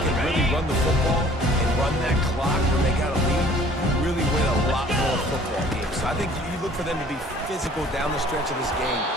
really run the football and run that clock when they got a lead, really win a lot more football games. So I think you look for them to be physical down the stretch of this game,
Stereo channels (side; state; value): both; normal; correlation 0.53